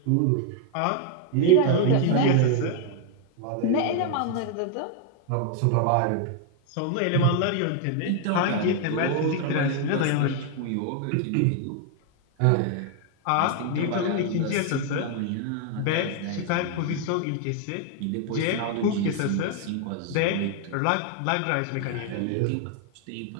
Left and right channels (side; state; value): both; different; correlation 0.00